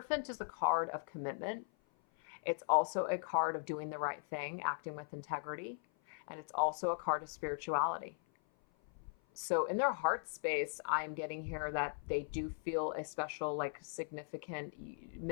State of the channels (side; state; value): right; silent; 52 dB below the other